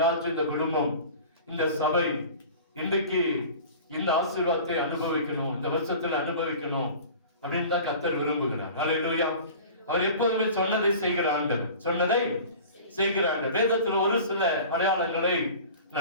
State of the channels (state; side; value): inverted; both; correlation -0.40